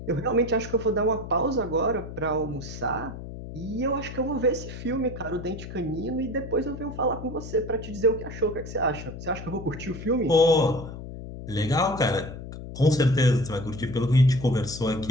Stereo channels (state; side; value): noise; left; hum, 10 dB below the sound